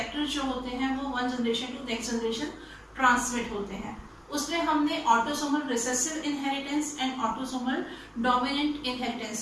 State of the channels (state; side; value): identical; both; correlation 1.00